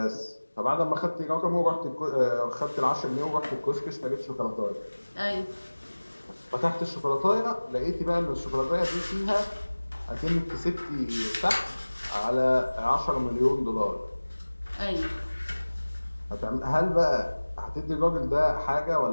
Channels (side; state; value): both; inverted; correlation -1.00